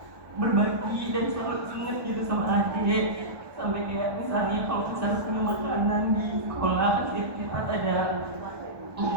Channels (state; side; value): late; left; 1.2 ms